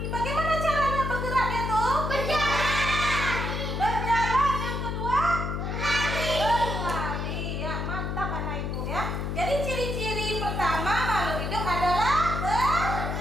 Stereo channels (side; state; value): left; noise; hum, 2 dB below the sound